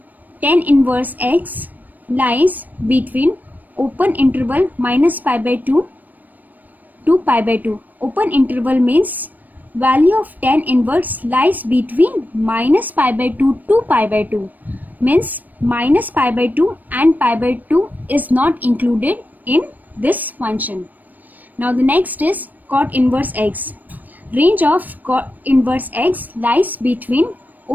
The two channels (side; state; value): left; late; 0.084 ms